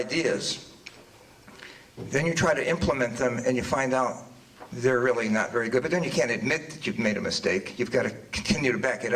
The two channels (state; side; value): identical; both; correlation 1.00